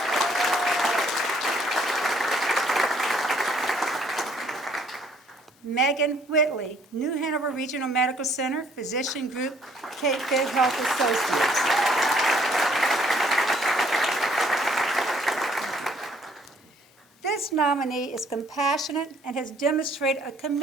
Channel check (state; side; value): normal; both; correlation 0.63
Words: Megan Whitley, New Hanover Regional Medical Center, Physician Group, Cape Fear Health Associates. This nominee is compassionate and has demonstrated a